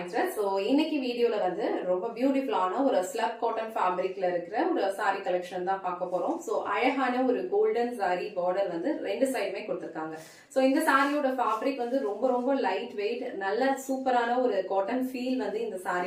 Thread. So இன்னைக்கு வீடியோல வந்து ரொம்ப பியூட்டிஃபுல்லான ஒரு ஸ்லப் காட்டன் ஃபேப்ரிக்ல இருக்கிற ஒரு saree கலெக்ஷன் தான் பார்க்க போறோம். சோ அழகான ஒரு கோல்டன் saree border வந்து ரெண்டு சைடுமே கொடுத்திருக்காங்க. சோ இந்த சாரியோட ஃபேப்ரிக் வந்து ரொம்ப லைட் வெயிட், நல்ல சூப்பரான ஒரு காட்டன் ஃபீல் வந்து இந்த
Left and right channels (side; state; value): both; identical; correlation 1.00